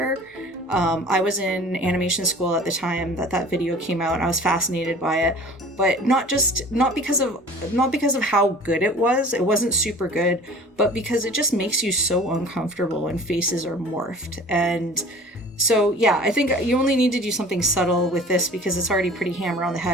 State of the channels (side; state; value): both; normal; correlation 0.45